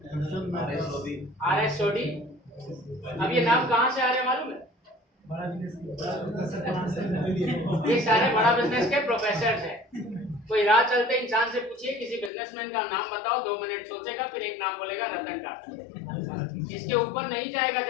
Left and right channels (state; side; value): drops out; right; at 12.3 s